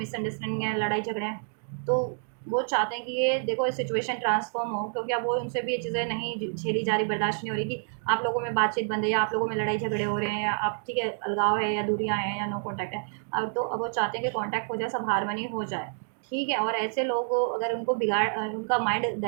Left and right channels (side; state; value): left; silent; digital silence